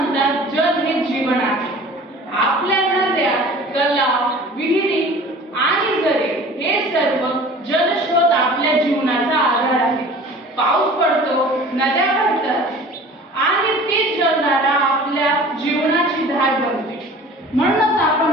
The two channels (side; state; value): both; normal; correlation 0.44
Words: जल हे जीवन आहे। आपल्या नद्या, तलाव, विहिरी आणि झरे हे सर्व जलस्रोत आपल्या जीवनाचा आधार आहे। पाऊस पडतो, नद्या भरतात आणि ती जलधारा आपल्या जीवनाची धार बनते। म्हणूनच आपण